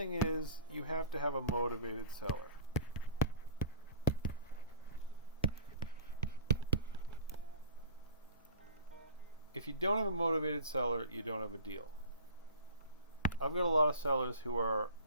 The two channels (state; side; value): inverted; both; correlation -0.44